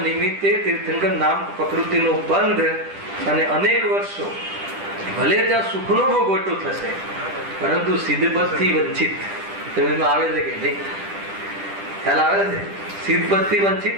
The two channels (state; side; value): late; left; 10 ms